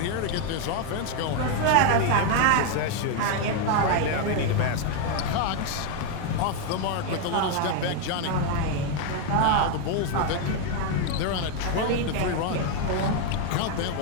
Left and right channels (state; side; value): different; both; correlation 0.01